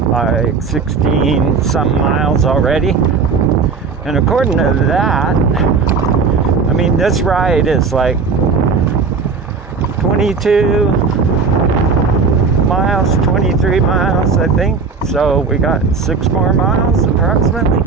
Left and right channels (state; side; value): quieter; left; 5.1 dB